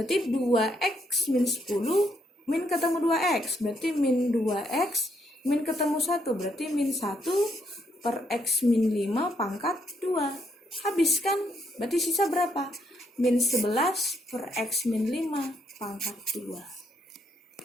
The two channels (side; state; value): both; normal; correlation 0.74